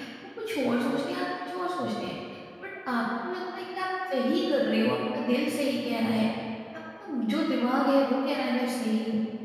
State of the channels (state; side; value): identical; both; correlation 1.00